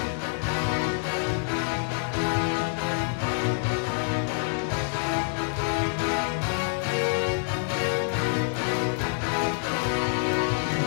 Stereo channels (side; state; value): right; silent; digital silence